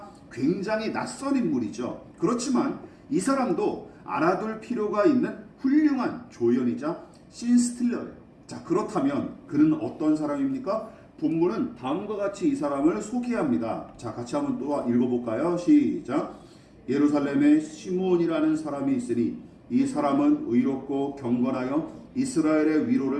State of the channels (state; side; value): identical; both; correlation 1.00